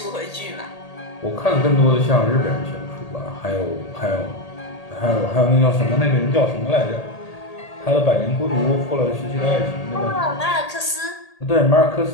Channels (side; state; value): right; late; 1.8 ms